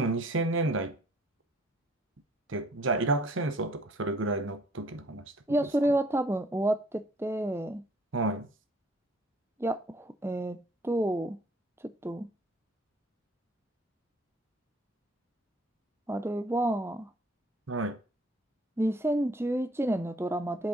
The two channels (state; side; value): normal; both; correlation 0.58